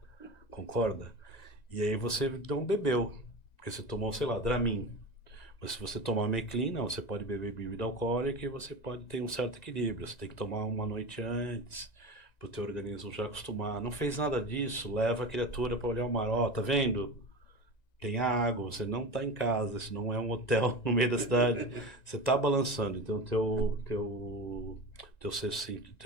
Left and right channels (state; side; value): late; right; 1.9 ms